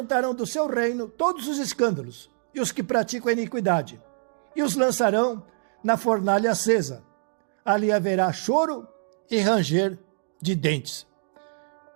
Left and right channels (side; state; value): left; silent; digital silence